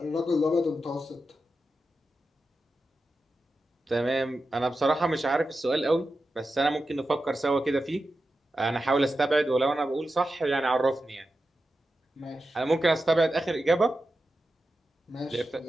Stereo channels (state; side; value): normal; both; correlation 0.91